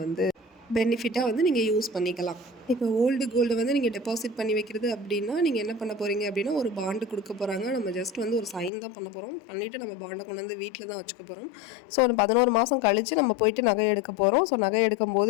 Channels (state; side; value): drops out; right; at 8.7 s